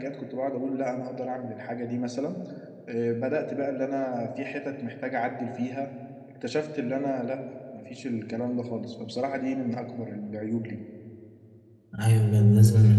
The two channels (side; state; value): both; identical; correlation 1.00